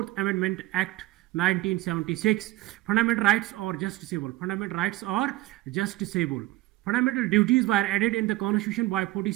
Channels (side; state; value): left; quieter; 17.8 dB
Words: Amendment Act 1976. Fundamental rights are justiciable. Fundamental rights are justiciable. Fundamental duties were added in the Constitution by